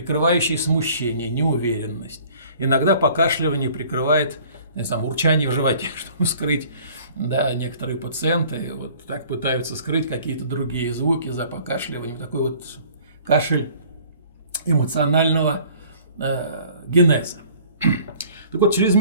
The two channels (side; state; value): both; inverted; correlation -0.53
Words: смущение, неуверенность. Иногда покашливание прикрывает урчание в животе, чтобы скрыть. Некоторые пациенты вот так пытаются скрыть какие-то другие звуки за покашливанием. Такой вот кашель эмоционального генеза. Так вот,